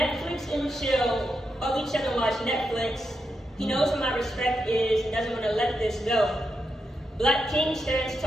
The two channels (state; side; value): normal; both; correlation 0.85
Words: and chill, or we chill and watch Netflix. He knows what my respect is and doesn't want to let this go. Black King stands